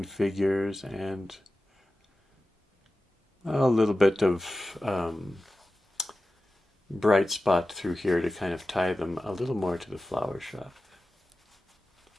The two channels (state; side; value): normal; both; correlation 0.94